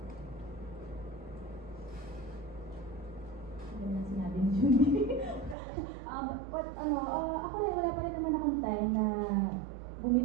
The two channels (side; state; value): left; drops out; at 5.6 s